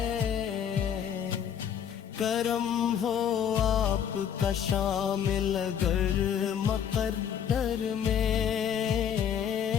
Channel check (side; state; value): right; quieter; 8.6 dB